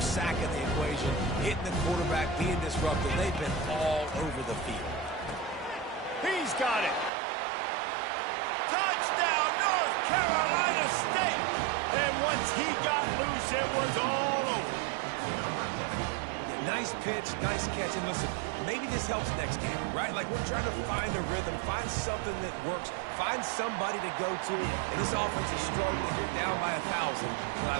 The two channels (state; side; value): drops out; left; at 7.1 s